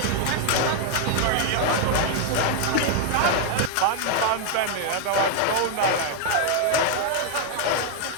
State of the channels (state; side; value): different; both; correlation 0.00